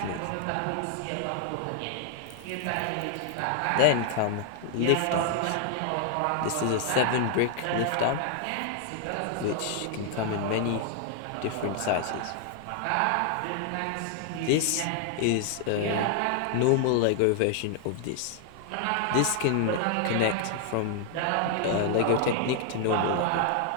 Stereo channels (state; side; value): different; both; correlation 0.00